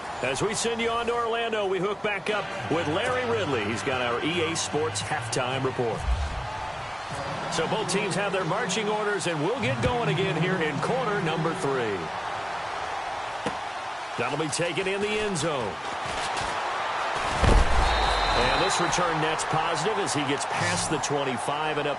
As we send you on to Orlando, we hook back up with Larry Ridley. He's got our EA Sports halftime report. So both teams have their marching orders, and we'll get going again here in quarter number 3. That'll be taken in the end zone. And this return net's positive as he gets past the 25 and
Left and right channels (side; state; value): both; identical; correlation 1.00